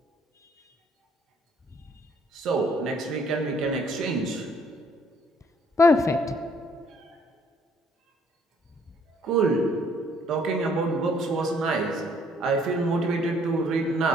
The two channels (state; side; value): normal; both; correlation 0.63